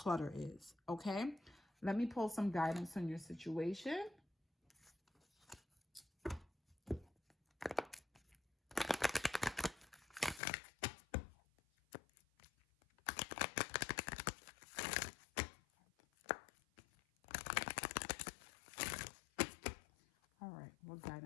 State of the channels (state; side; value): drops out; right; at 10.4 s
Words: is, okay? Let me pull some guidance on your situation. All right, what